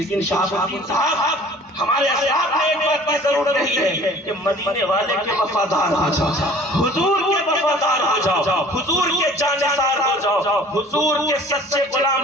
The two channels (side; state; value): both; normal; correlation 0.49